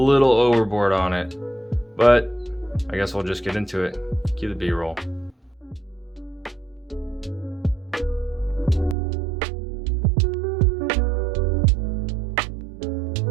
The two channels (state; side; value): drops out; left; at 9.0 s